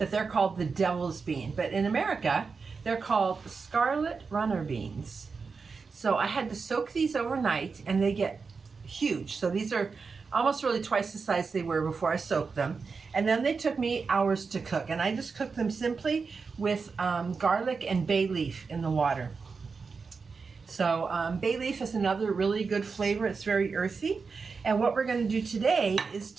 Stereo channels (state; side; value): quieter; left; 4.9 dB